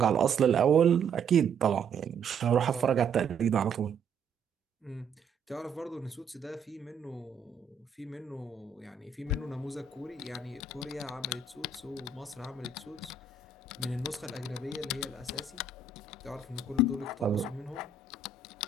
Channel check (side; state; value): left; quieter; 5.0 dB